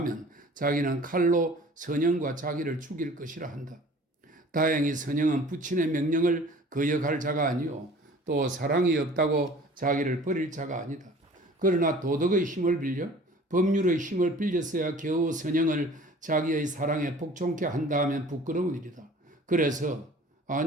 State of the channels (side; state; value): both; normal; correlation 0.47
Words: 자기는 칼로 선영과 자기를 죽일 것이라 한다. 다행히 선영은 부친의 명령을 거역할 자가 아니요 또 사랑이 없다고 자기를 버릴 자가 아니다. 그러나 도덕의 힘을 빌려 법률의 힘을 빌렸어야 겨우 선영을 자기의 사랑에 복종케 한다 하면 부끄러운 일이다. 그래서